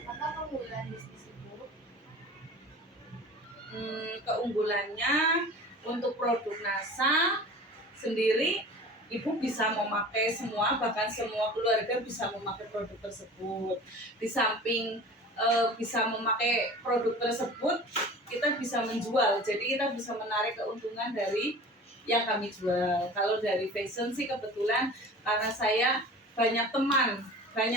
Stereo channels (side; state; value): both; normal; correlation 0.39